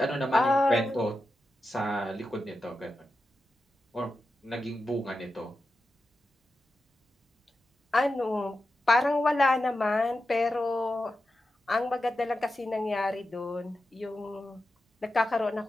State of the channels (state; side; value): normal; both; correlation 0.90